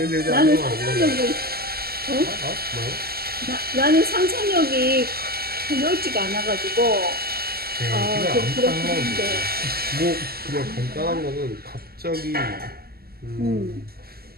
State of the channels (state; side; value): late; left; 0.45 ms